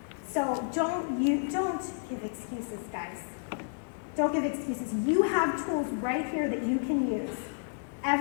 So don't give excuses, guys. Don't give excuses. You have tools right here that you can use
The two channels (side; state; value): right; silent; digital silence